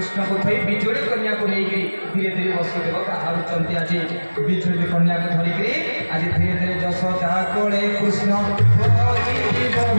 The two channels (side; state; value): both; inverted; correlation -1.00